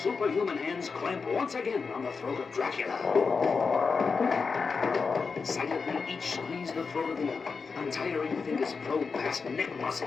hands clamp once again on the throat of Dracula. Silently, each squeeze the throat of the other. Untiring fingers probe past neck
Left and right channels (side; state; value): right; quieter; 5.0 dB